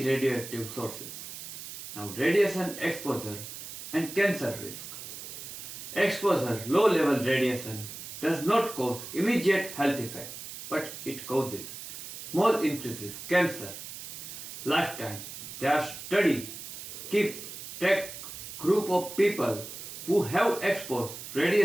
sources. Now radiation exposure and cancer risk. Exposure low level radiation does not cause immediate health effect, but it causes small increases cancer. Lifetime. Their study keep track group of people who have exposed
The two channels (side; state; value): right; noise; hiss, 10 dB below the sound